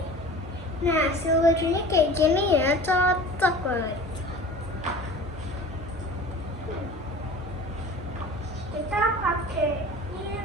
Nah, hasil bajunya kayak gini ya, cocok banget. Kita pakai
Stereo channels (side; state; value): both; normal; correlation 0.40